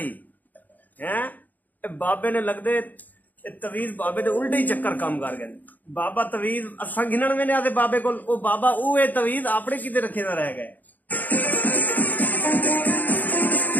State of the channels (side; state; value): right; late; 0.083 ms